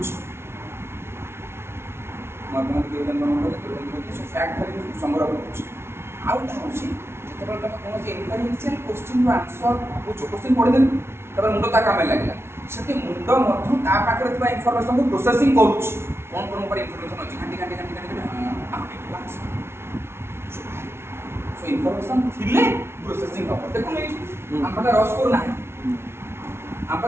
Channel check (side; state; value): left; late; 0.12 ms